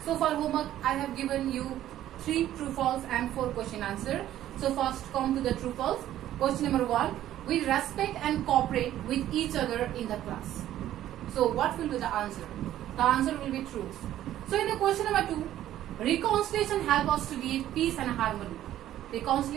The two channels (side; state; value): left; quieter; 12.7 dB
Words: So for homework, I have given you 3 true false and 4 question answer. So first come to the true false. Question number 1, we respect and cooperate with each other in the class. So what will be the answer? The answer will be true. So in the question number 2, reconciliation help us to live peace and harmony.